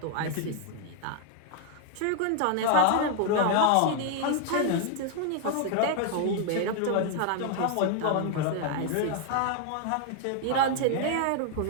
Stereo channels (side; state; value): both; different; correlation 0.00